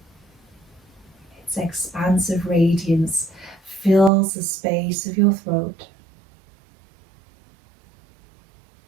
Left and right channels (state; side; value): drops out; left; at 4.1 s